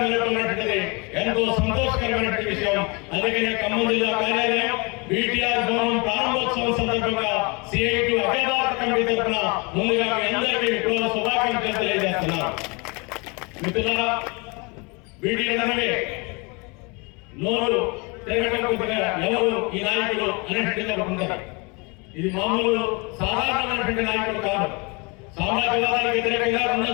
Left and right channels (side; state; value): right; quieter; 29.5 dB